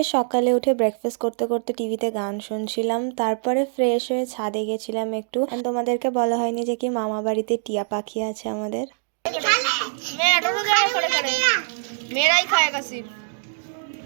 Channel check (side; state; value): left; silent; digital silence